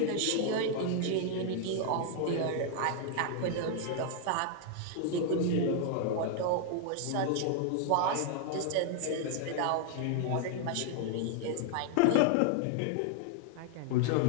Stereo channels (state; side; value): different; both; correlation 0.00